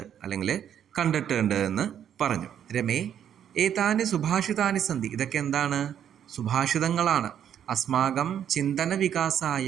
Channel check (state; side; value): quieter; left; 9.4 dB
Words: അല്ലെങ്കിൽ കണ്ടിട്ടുണ്ട് എന്ന് പറഞ്ഞു. രമേ ഏതാനി സുഭാഷിതാനി സന്ധി, ഇതൊക്കെ എന്താണ്? സുഭാഷിതങ്ങളാണ്. അസ്മാകം ചിന്തന